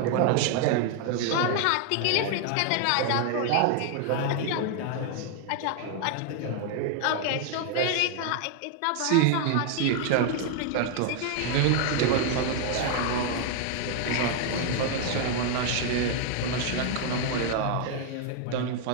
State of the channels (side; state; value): both; different; correlation 0.00